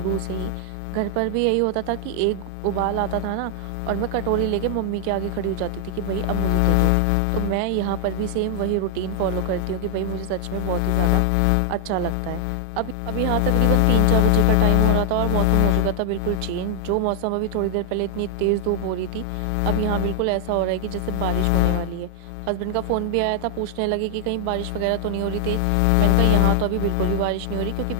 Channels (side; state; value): both; different; correlation 0.00